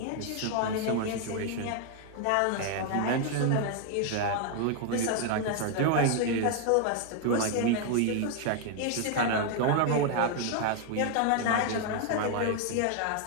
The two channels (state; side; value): different; both; correlation 0.00